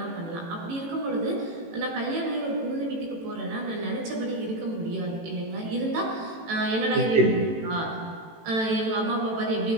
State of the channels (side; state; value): left; late; 18 ms